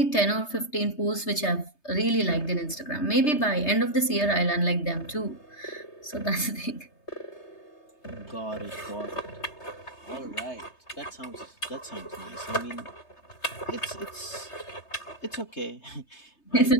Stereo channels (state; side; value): late; right; 3.3 ms